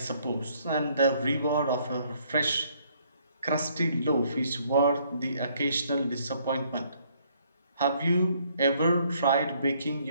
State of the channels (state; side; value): inverted; both; correlation -0.66